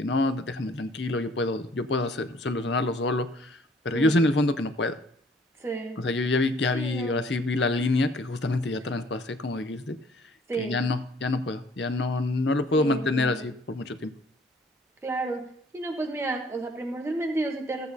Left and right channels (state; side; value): normal; both; correlation 0.58